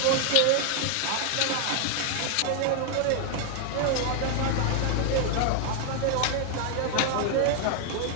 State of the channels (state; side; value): different; both; correlation 0.00